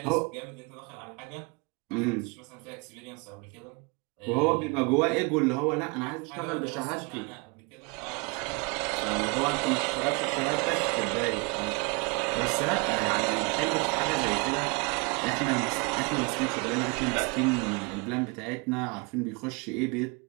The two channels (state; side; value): quieter; left; 29.8 dB